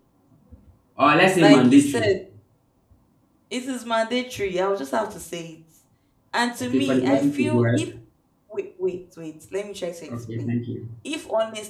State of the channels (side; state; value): both; identical; correlation 1.00